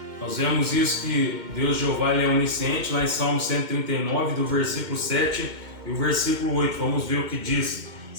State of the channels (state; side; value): late; left; 2.1 ms